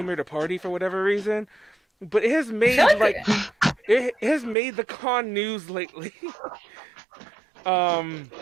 here to party for whatever reason. But it has made, it has made the con news lately.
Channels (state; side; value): drops out; left; at 4.5 s